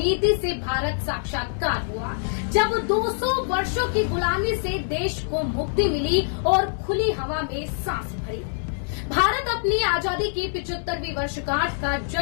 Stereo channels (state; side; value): silent; right; digital silence